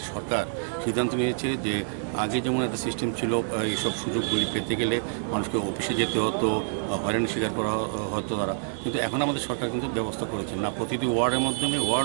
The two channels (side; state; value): left; silent; digital silence